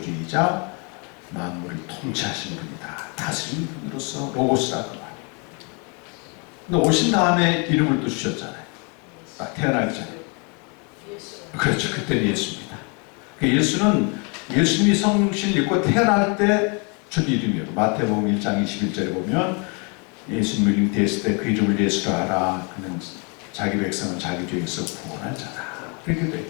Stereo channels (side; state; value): right; quieter; 34.2 dB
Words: 만물을 통치하시는 분이다. 다스리는 분으로서 로고스라고 말해요. 근데 오신 다음에 이름을 또 주셨잖아요. 딱 태어나기 전에. 그렇죠. 그때는 예수입니다. 예수는 예수님이 성신을 입고 태어날 때 준 이름이에요. 마태복음 1장 21절에 보면 예수님 이름 됐을 때 그 이름을 예수라 하라. 그는 자기 백성은 자기 죄에서 구원할 자다. 그렇게 돼요.